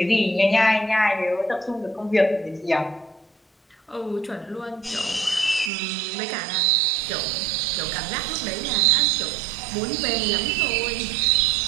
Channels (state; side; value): drops out; left; at 5.7 s